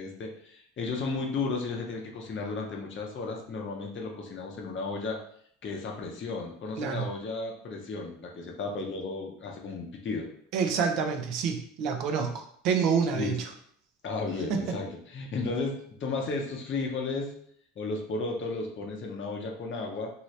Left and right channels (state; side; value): normal; both; correlation 0.38